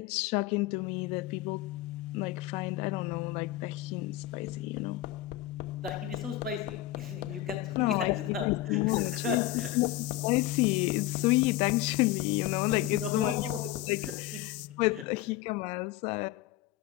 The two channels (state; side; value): quieter; right; 15.2 dB